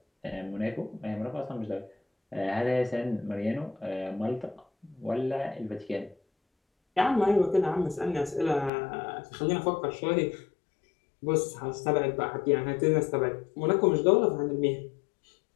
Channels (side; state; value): right; drops out; at 8.7 s